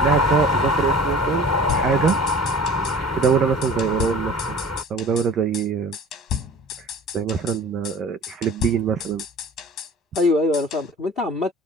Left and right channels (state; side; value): normal; both; correlation 0.43